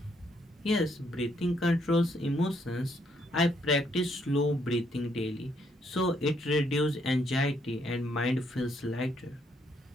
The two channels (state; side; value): normal; both; correlation 0.72